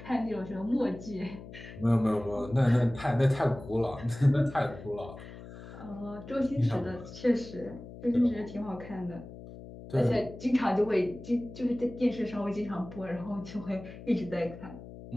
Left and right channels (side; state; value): left; noise; hum, 14 dB below the sound